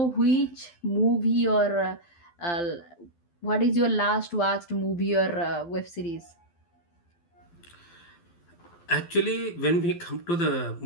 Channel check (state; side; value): late; right; 12 ms